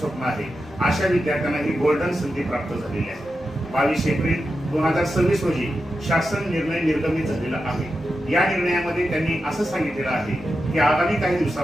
आहे, अशा विद्यार्थ्यांना ही गोल्डन संधी प्राप्त झालेली आहे। 22 एप्रिल 2026 रोजी शासन निर्णय निर्गमित झालेला आहे। या निर्णयामध्ये त्यांनी असं सांगितलेलं आहे की आगामी काही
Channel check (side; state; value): both; normal; correlation 0.89